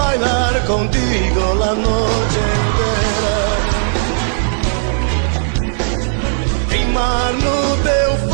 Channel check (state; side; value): silent; left; 67 dB below the other